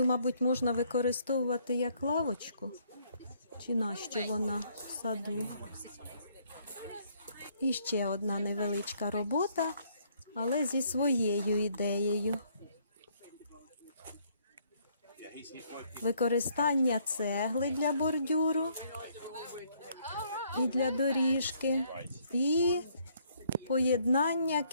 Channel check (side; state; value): both; inverted; correlation -0.67